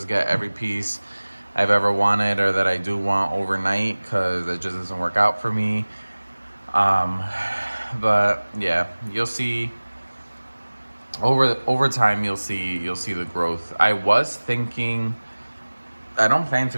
get every piece I've ever wanted or that I do want overnight, because it just doesn't work out for me. But yeah, you'll see over time, you'll see the growth. I was thinking, I don't plan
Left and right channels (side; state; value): both; inverted; correlation -1.00